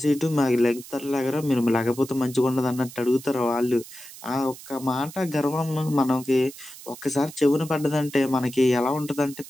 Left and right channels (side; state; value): right; noise; hiss, 16 dB below the sound